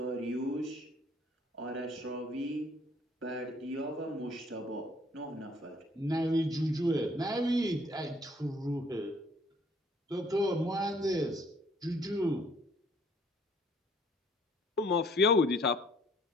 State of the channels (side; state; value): both; normal; correlation 0.60